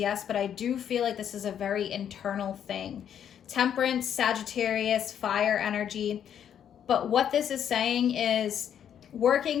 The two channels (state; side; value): quieter; right; 9.2 dB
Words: but I do feel like this is a very internal thing. Temperance, Sagittarius, fire energy. But what this is saying is